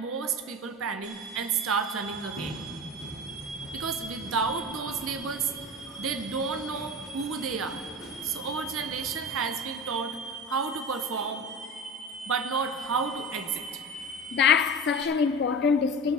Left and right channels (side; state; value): both; normal; correlation 0.31